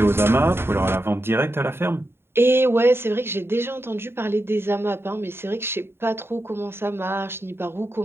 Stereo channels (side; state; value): left; late; 0.11 ms